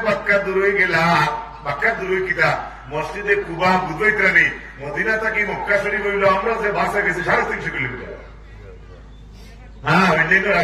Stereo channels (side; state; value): both; identical; correlation 1.00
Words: মক্কা দূর হয়ে গেলা মক্কা দূর হয়ে কিটা মসজিদে কুবা বুঝাইতে নেই মদিনা থেকে মক্কা শরীফ হইল আমরা যে বাসে গেছি 350 কিলোমিটার হ্যাঁ অন্যান্য